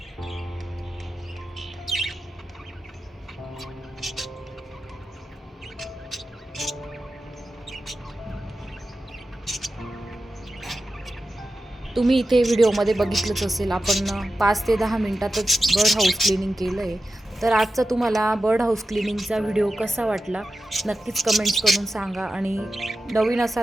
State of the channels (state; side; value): normal; both; correlation 0.92